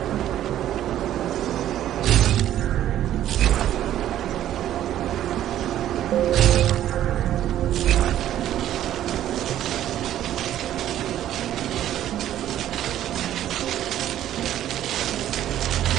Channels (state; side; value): quieter; left; 12.0 dB